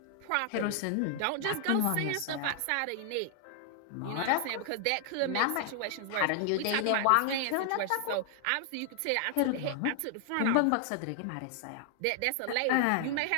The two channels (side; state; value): both; different; correlation 0.00